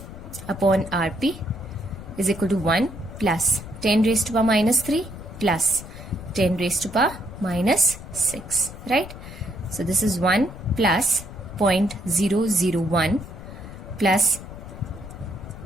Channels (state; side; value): noise; left; rumble, 13 dB below the sound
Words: upon Rp is equal to 1 plus 10 raised to power minus 3 plus 10 raised to power minus 6, right? So this is 1 plus 0.001 plus,